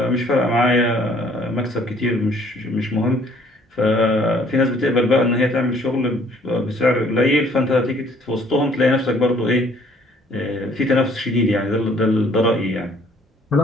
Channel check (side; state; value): both; normal; correlation 0.59